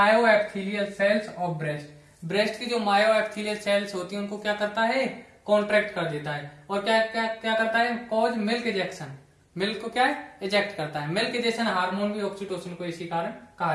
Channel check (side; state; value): both; identical; correlation 1.00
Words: epithelial cells of breast. Breast की जो मायो एपिथेलियल सेल्स होती है उनको क्या करता है, कॉन्ट्रैक्ट कर देता है। और क्या क्या क्या करता है, कॉज मिल्क इजेक्शन, मिल्क को क्या है, इजेक्ट करता है। मिल्क इजेक्शन हार्मोन भी ऑक्सीटोसिन को इसी कारण कहा